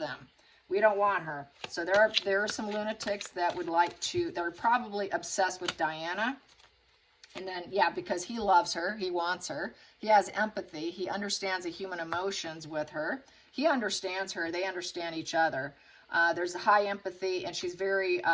We don't want her. So there are some lunatics that would like to, they're probably obsessed with Diana. And then, yeah, because he loves her, he wants her. He has empathy. He understands the human emotions with her. He understands her. They understand each other. There's a high empathy, and she's very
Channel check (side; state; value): both; identical; correlation 1.00